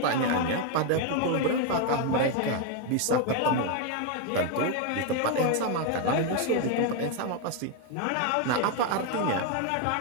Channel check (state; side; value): different; both; correlation 0.01